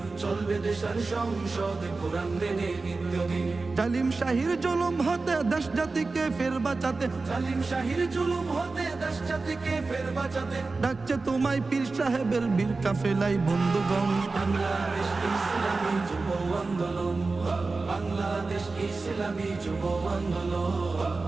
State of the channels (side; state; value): left; quieter; 3.8 dB